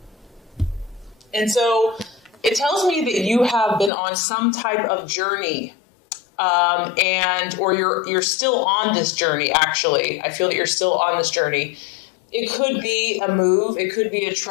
And so it tells me that you have been on some type of journey, or you're still on this journey, actually. I feel that you're still on this journey. It could be a move, it could be a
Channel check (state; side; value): drops out; right; at 3.9 s